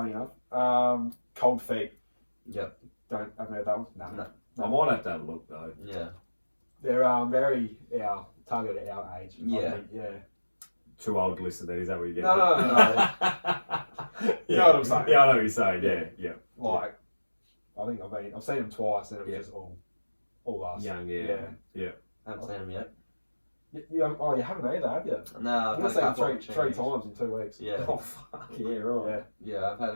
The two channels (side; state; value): both; inverted; correlation -1.00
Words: enough. Cold Feet. Yep. Haven't heard that one? No. I might have to have a look though. Yeah. They're very targeted at our age. Yeah. I think, yeah. Too old to listen then, is that what you're getting? No. You know what I'm saying? Yeah, I know what you're saying, yeah. Like, I think I've seen them twice and it was just all us. Young, I haven't seen them yet. You haven't either, have you? No, I've seen them three times in 2 weeks. Yeah. Oh, fuck, yeah, right. Yeah, I've had